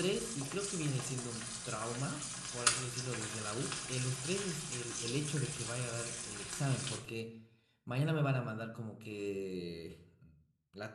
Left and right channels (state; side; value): identical; both; correlation 1.00